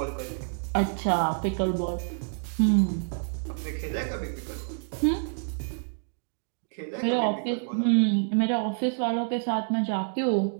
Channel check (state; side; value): silent; left; digital silence